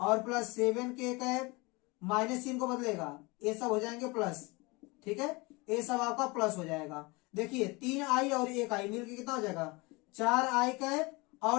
प्लस 7 के कैप, माइनस चिन्ह को बदलेगा ये सब हो जाएंगे प्लस। ठीक है, ये सब आपका प्लस हो जाएगा। देखिए 3 आई और 1 आई मिलकर कितना हो जाएगा 4 आई कैप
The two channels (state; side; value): quieter; right; 25.5 dB